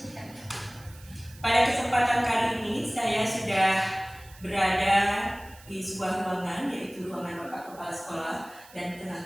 kali ini saya sudah berada di sebuah ruangan, yaitu ruangan Bapak Kepala Sekolah, dan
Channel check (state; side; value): noise; right; hiss, 22 dB below the sound